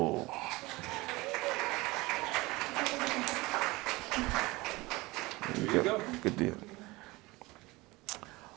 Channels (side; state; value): left; quieter; 22.0 dB